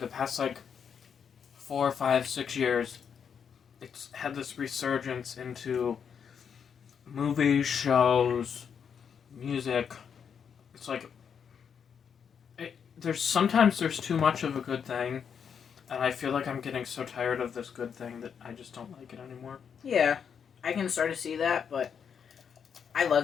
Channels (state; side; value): quieter; right; 7.2 dB